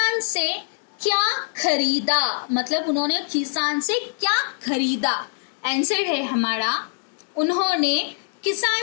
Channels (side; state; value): right; silent; digital silence